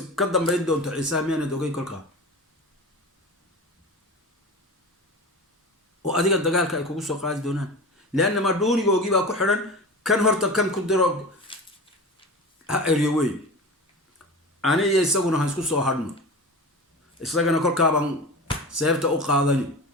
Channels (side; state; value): both; normal; correlation 0.31